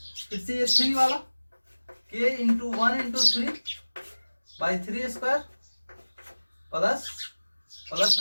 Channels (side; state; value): both; inverted; correlation -1.00